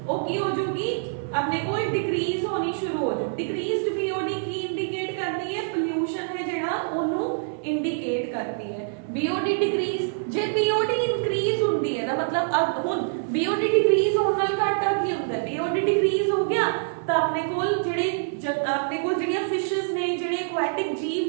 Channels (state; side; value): silent; left; 56 dB below the other